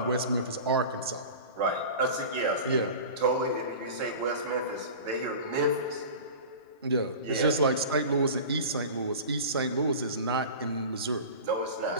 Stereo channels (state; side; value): inverted; both; correlation -0.35